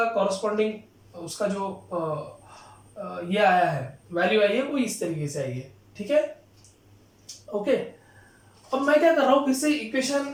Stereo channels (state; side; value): identical; both; correlation 1.00